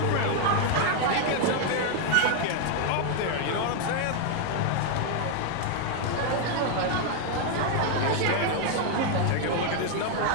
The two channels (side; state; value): both; different; correlation 0.00